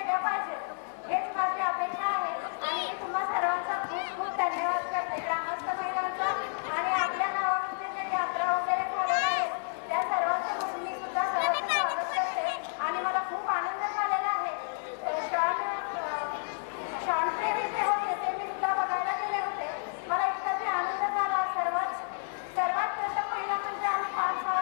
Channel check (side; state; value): right; silent; digital silence